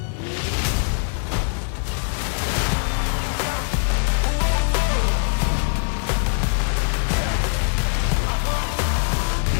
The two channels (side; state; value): right; silent; digital silence